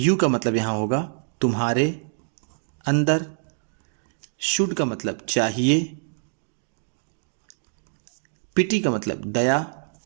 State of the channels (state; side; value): silent; left; digital silence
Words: का मतलब यहां होगा तुम्हारे अंदर, शुड का मतलब चाहिए, पिटी का मतलब दया।